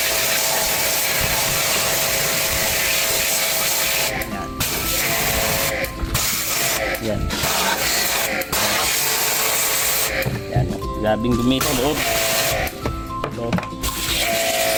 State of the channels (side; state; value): both; identical; correlation 1.00